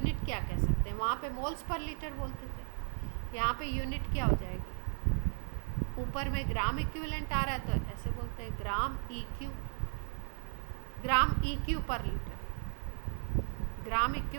क्या कह सकते हैं, वहाँ पे मोल्स पर लीटर बोलते थे, यहाँ पे यूनिट क्या हो जाएगी, ऊपर में ग्राम इक्विवेलेंट आ रहा है तो ऐसे बोलते हैं ग्राम EQ, ग्राम EQ पर लीटर, ग्राम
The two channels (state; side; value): silent; left; 54 dB below the other